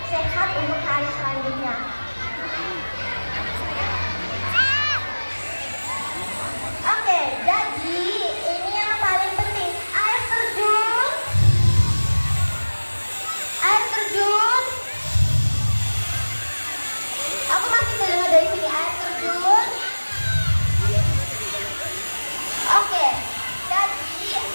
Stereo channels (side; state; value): both; inverted; correlation -1.00